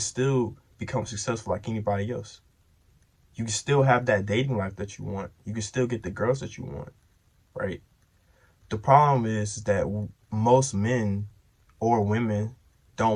become successful like anybody else. You can still have that dating life that you want. You can still get the girls that you want, right? The problem is that most men or women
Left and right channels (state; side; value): identical; both; correlation 1.00